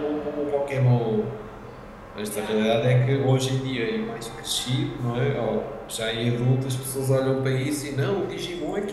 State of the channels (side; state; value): both; identical; correlation 1.00